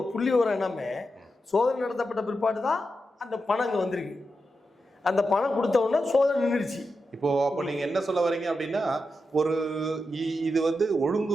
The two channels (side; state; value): both; normal; correlation 0.88